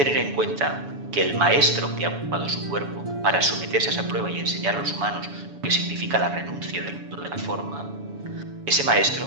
en cuenta que el maestro que ha ocupado su cuerpo para someterse a esa prueba y enseñar a los humanos lo que significa la renuncia del mundo de la forma, ese maestro,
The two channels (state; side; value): late; left; 7.1 ms